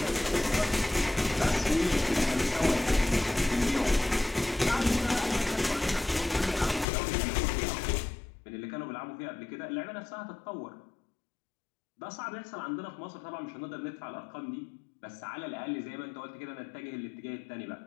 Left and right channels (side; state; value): right; drops out; at 6.9 s